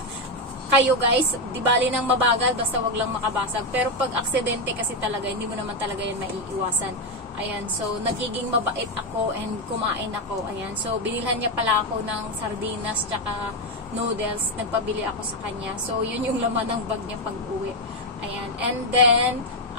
kayo guys, di bali nang mabagal, basta wag lang makabasag. Pero pag aksidente kasi talaga, hindi mo naman talaga yan maiiwasan. Ayan. So, nagiging mabait ako and kumain ako. Ayan. So, binilhan niya pala ako ng sardinas tsaka noodles. Nagpabili ako sa kanya. So, yun yung laman ng bag niya pag uwi. Ayan. And then,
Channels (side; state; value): both; normal; correlation 0.06